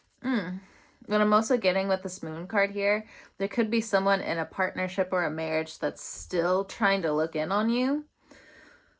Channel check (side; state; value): both; identical; correlation 1.00